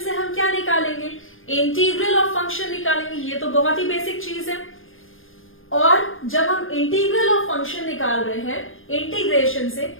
से हम क्या निकालेंगे, इंटीग्रल ऑफ फंक्शन निकालेंगे। ये तो बहुत ही बेसिक चीज है। और जब हम इंटीग्रल ऑफ फंक्शन निकाल रहे हैं इंटीग्रेशन से,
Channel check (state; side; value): late; right; 0.59 ms